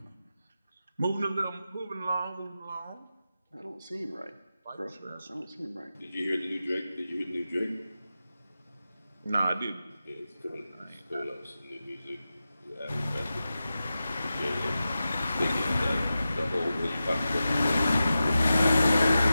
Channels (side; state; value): both; inverted; correlation -0.93